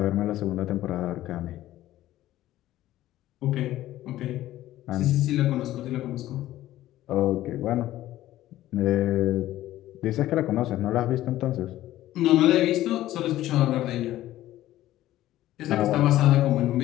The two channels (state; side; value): quieter; right; 14.5 dB